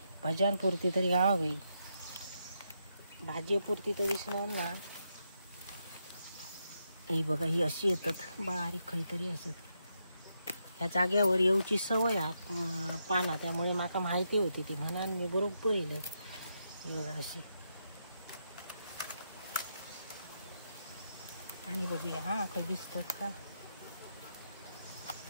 भज्यांपुरती तरी गावावी, भाजीपुरती तर दिसणार ना। ही बघा, ही अशी येतात बारीक काहीतरी असत। ह्या जाग्यावर येऊची सवय पाना, त्यामुळे माका माहिती होती ती, म्हणून मी बरोबर येईल। बघा अशी, आणि बघूया हा काही दिसतात का।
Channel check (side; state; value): both; inverted; correlation -0.82